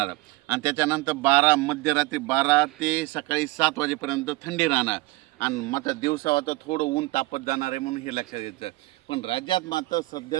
आणि त्याच्यानंतर मध्यरात्री 12 ते सकाळी 7 वाजेपर्यंत थंडी राहणार. आणि मात्र दिवसा आता थोडं ऊन तापत जाणार आहे, म्हणून हे लक्षात घ्यायचं. पण राज्यात मात्र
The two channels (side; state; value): left; quieter; 21.4 dB